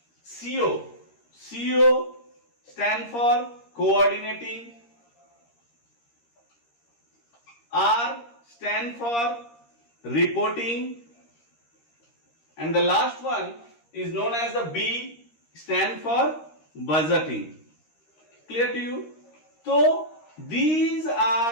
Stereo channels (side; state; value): right; late; 13 ms